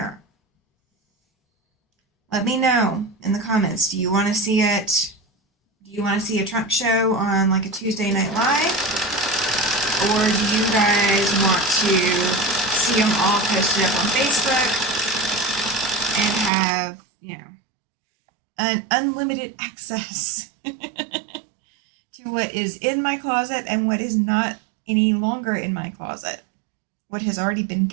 Let me know in the comments. Do you want to see it? Do you want to see a trunk show on like a Tuesday Night Live? or do you guys want to see them all posted up on Facebook and have, you know, an unlimited access to what is in my closet and what is not any longer in my closet, what has already been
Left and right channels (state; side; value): drops out; left; at 16.5 s